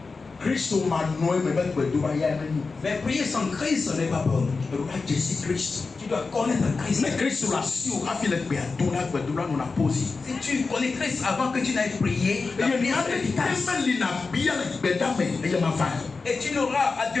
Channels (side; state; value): right; quieter; 4.2 dB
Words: Mais prier sans Christ, ce n'est pas bon. Tu dois connaître Christ. Si tu connais Christ avant que tu n'ailles prier, la prière est efficace. Et tu n'auras à